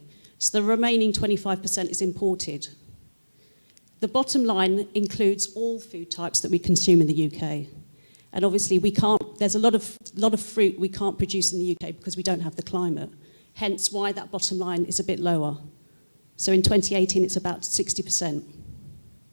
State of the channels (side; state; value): both; inverted; correlation -1.00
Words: So the remaining 25% is imported. The bottom line includes all food types that we consume in the UK. And obviously there's a lot of fruit we can't produce in the UK because we don't have the climate. Hence why that bottom line is a bit lower. So in 2018, it's about 60%.